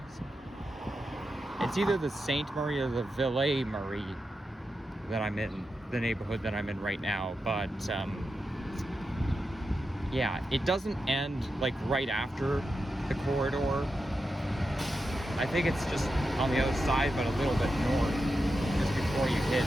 it's either the Sainte-Marie or the Ville-Marie that I'm in, the neighborhood that I'm in right now. But yeah, it doesn't end like right after the corridor. I think it's just on the other side, but a little bit north, just before you hit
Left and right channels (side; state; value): both; normal; correlation 0.89